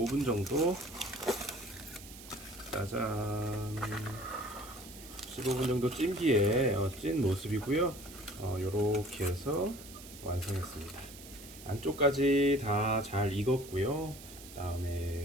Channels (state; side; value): noise; right; hiss, 16 dB below the sound